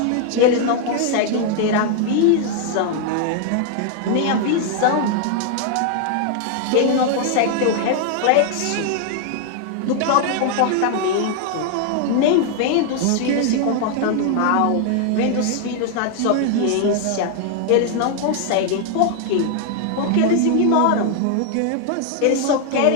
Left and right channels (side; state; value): both; different; correlation 0.00